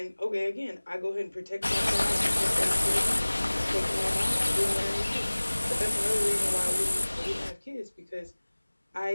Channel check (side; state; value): both; inverted; correlation -1.00